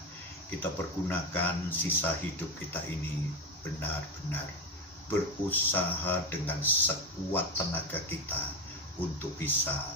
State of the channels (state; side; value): normal; both; correlation 0.16